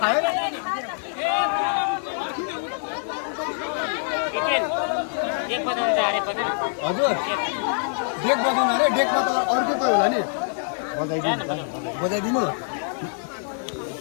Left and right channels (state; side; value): silent; right; digital silence